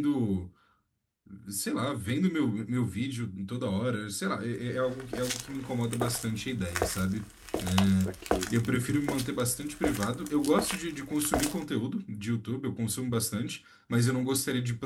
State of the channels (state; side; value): identical; both; correlation 1.00